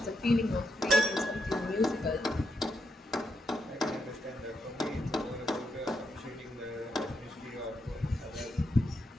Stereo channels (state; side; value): normal; both; correlation 0.81